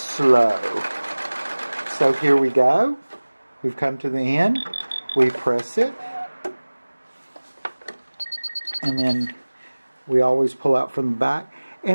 So here we go. We've come to the end. We press it. And then we always pull out from the back.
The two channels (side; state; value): both; inverted; correlation -1.00